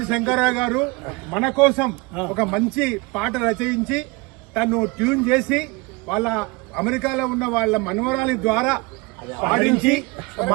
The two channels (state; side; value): quieter; left; 26.0 dB